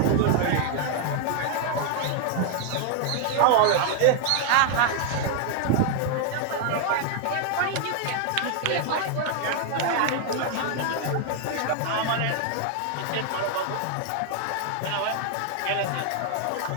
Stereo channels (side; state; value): both; different; correlation 0.00